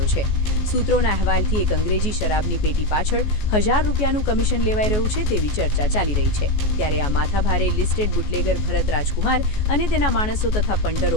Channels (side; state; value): right; late; 14 ms